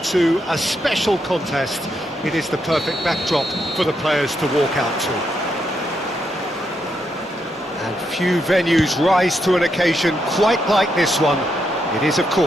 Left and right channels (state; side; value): normal; both; correlation 0.80